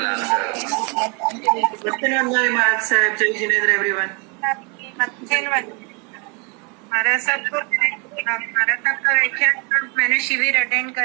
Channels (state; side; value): quieter; left; 32.8 dB